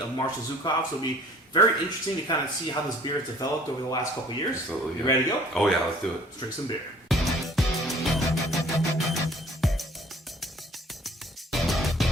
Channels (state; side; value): normal; both; correlation 0.53